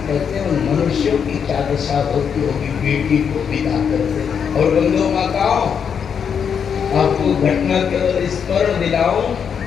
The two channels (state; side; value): quieter; right; 7.2 dB